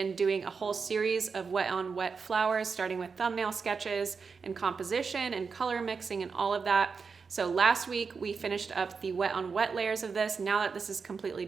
doing a whole series of wet on wet flowers, starting with thumbnail sketches and composition and color mixing and all of that. So last week we finished up the wet on wet layers of this. Now that this is completely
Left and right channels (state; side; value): quieter; left; 5.3 dB